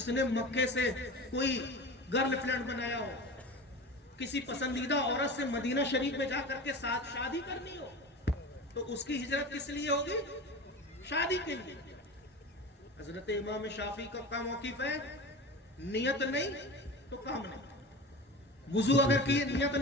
نے مکے سے کوئی گرل فرینڈ بنایا ہو، کسی پسندیدہ عورت سے مدینہ شریف میں جا کر کے ساتھ شادی کرنی ہو تو اس کی ہجرت کس لیے ہوگی؟ شادی کے لیے۔ حضرت امام شافعی کا موقف ہے نیت نہیں تو کام نہیں۔ وضو اگر کیے نیت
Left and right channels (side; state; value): both; normal; correlation 0.31